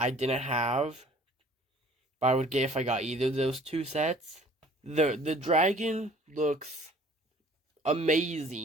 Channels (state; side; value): normal; both; correlation 0.52